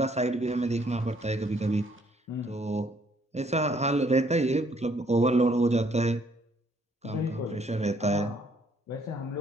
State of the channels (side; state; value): both; normal; correlation 0.65